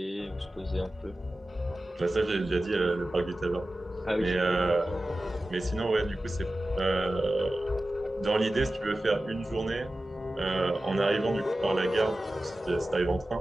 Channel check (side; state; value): both; normal; correlation 0.95